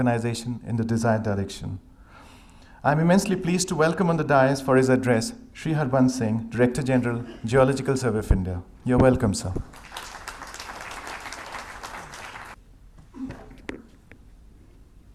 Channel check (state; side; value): identical; both; correlation 1.00